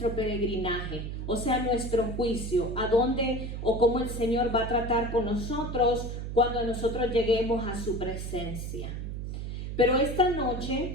peregrinaje, o sea, nuestro juicio, a dónde o cómo el Señor va a tratar con nosotros cuando nosotros lleguemos a su presencia. Pero esta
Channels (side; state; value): right; noise; hum, 5 dB below the sound